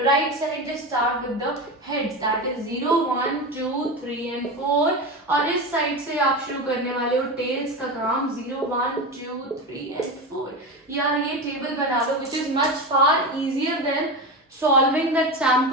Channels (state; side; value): normal; both; correlation 0.22